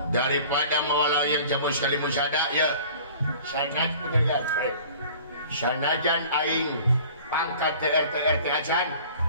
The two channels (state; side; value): inverted; both; correlation -0.47